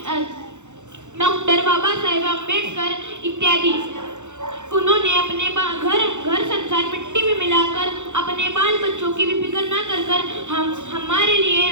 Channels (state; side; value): late; left; 0.84 ms